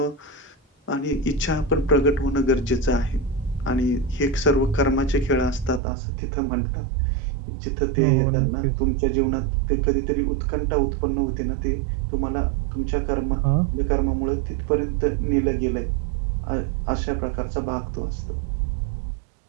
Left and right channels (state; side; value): drops out; left; at 5.8 s